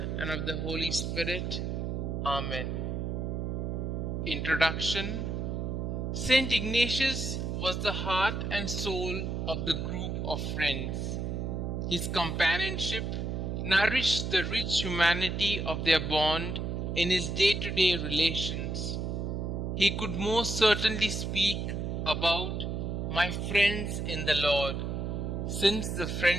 and of the Holy Spirit. Amen. Introduction. St Ignatius was the heart and soul of the group of friends. His companionship nourished the rich humanity of their bond in his day-to-day relations. He could most certainly speak about "my friends in the Lord," since the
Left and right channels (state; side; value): noise; right; hum, 2 dB below the sound